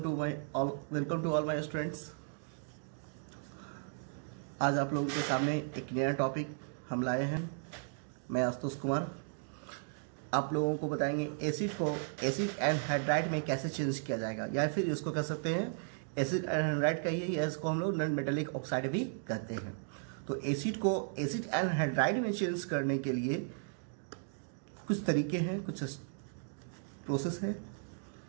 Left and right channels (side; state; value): left; silent; digital silence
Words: to all my students. आज आप लोगों के सामने एक नया टॉपिक हम लाए हैं। मैं आशुतोष कुमार आप लोगों को बताएंगे एसिड को एसिड एनहाइड्राइड में कैसे चेंज किया जाएगा, या फिर इसको कह सकते हैं एसिड एनहाइड्राइड कहिए, या इसको हम लोग नॉन मेटालिक ऑक्साइड भी कहते हैं। तो एसिड को एसिड एनहाइड्राइड में चेंज करने के लिए कुछ तरीके हैं, कुछ प्रोसेस है।